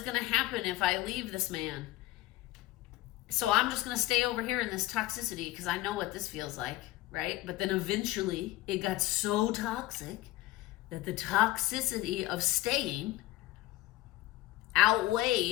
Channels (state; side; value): quieter; right; 17.0 dB